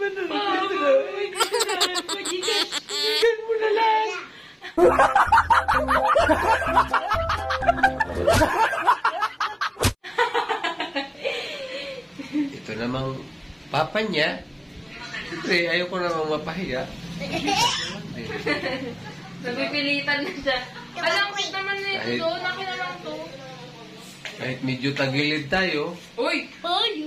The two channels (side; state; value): both; identical; correlation 1.00